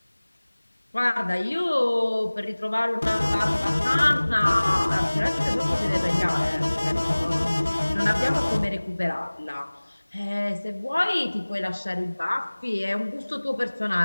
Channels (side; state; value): both; inverted; correlation -1.00